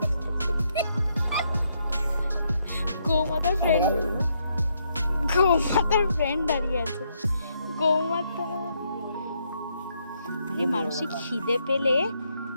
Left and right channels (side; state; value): both; inverted; correlation -0.76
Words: গৌমাতার ফ্রেন্ড দাঁড়িয়ে আছে। গৌমাতা, আরে মানুষের খিদে পেলে,